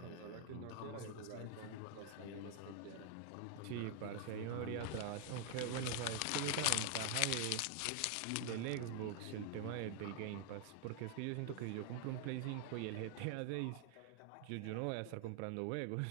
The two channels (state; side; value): different; both; correlation 0.00